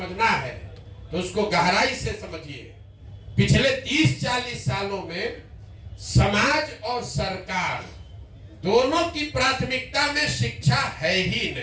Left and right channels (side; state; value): both; identical; correlation 1.00